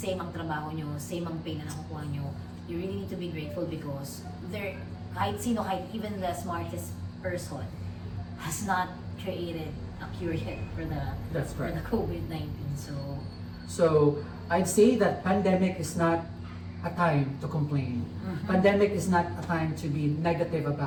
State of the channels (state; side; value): identical; both; correlation 1.00